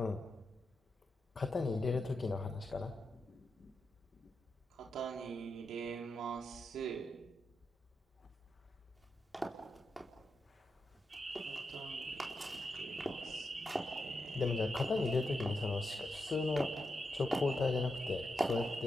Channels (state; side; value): normal; both; correlation 0.87